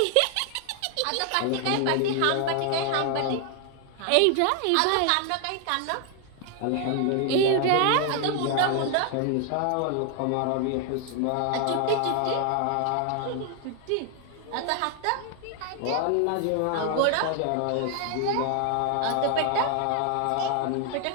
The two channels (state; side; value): different; both; correlation 0.00